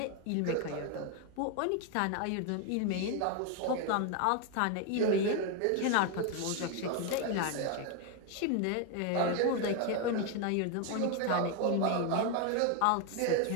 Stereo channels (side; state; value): both; different; correlation 0.01